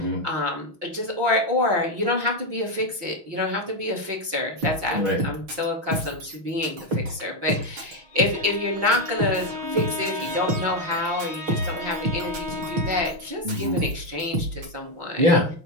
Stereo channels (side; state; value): left; late; 6.2 ms